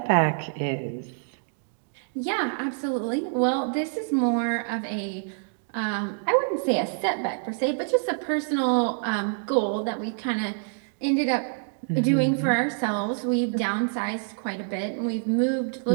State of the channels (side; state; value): left; silent; digital silence